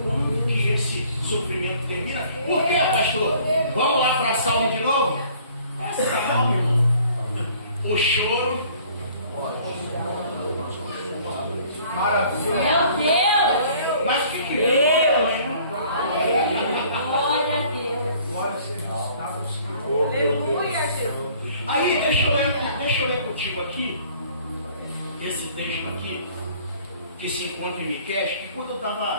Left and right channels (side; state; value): both; inverted; correlation -0.55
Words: quando que esse sofrimento termina? Por quê, pastor? Vamos lá para a Salmo de novo? É Salmo, irmão. O choro. Maravilha. Meu Deus! Mas o que é? Glória aqui, que se encontra em Miqueias, que quando eu